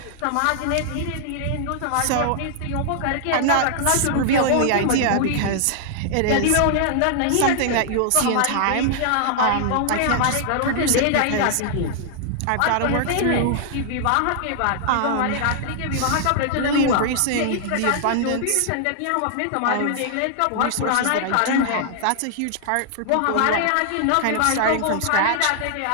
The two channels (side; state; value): both; different; correlation -0.01